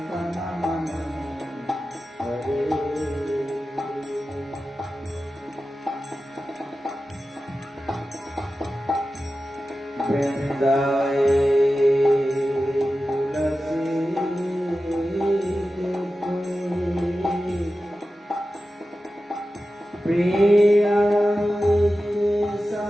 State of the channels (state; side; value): normal; both; correlation 0.93